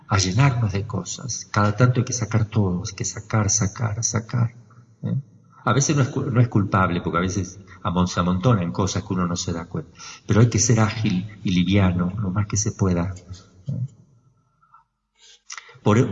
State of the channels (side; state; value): both; identical; correlation 1.00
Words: llenarnos de cosas. Cada tanto hay que sacar todo, hay que sacar. ¿Eh? A veces no es culpable, porque a veces se amontonan cosas que uno no se da cuenta. Pero hay que ser ágil y liviano, lo más que se pueda.